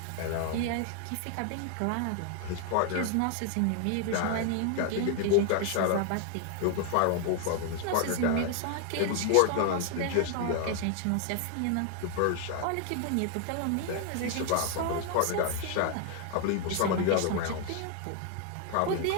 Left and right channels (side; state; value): both; different; correlation 0.00